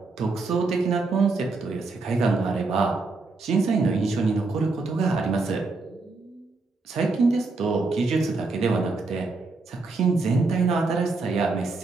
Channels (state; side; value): quieter; left; 3.7 dB